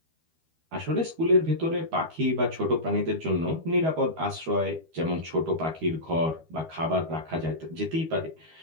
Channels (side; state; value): left; late; 12 ms